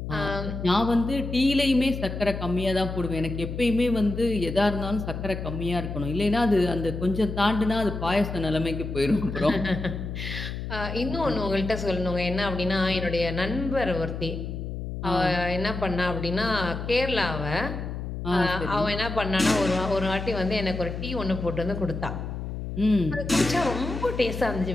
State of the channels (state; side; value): noise; left; hum, 6 dB below the sound